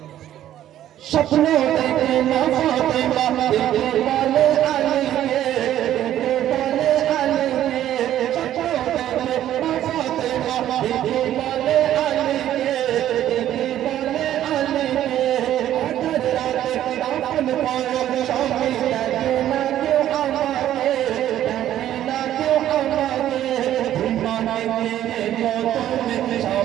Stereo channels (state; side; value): quieter; left; 12.0 dB